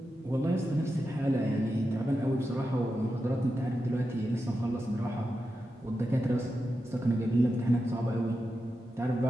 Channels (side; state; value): both; normal; correlation 0.89